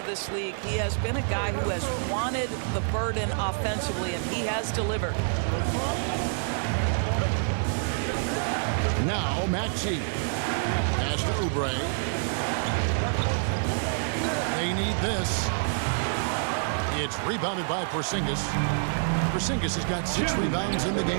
this league, he has been a guy who has wanted the burden offensively, and he has delivered. Now Maxey. Pass to Oubre. They need this. It's rebounded by Porzingis. Porzingis has got 6 rebounds in the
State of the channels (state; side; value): silent; left; digital silence